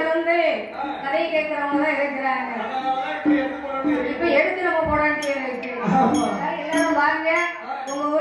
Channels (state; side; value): identical; both; correlation 1.00